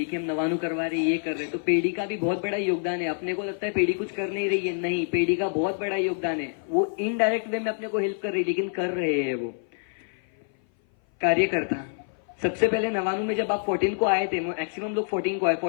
कि हम नवानु करवा रहे, ये कर रहे। तो पेड़ी का भी बहुत बड़ा योगदान है। अपने को लगता है पेड़ी कुछ कर नहीं रही है, नहीं, पेड़ी का बहुत बड़ा योगदान है। वो इनडायरेक्ट वे में अपने को हेल्प कर रही, लेकिन कर रहे हैं वो कार्यकर्ता। सबसे पहले नवानु में जब आप 14 को आए थे, मैक्सिमम लोग 14 को आए,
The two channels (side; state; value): right; silent; 57 dB below the other